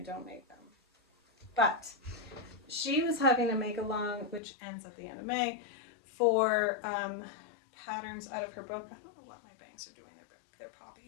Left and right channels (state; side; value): drops out; right; at 4.4 s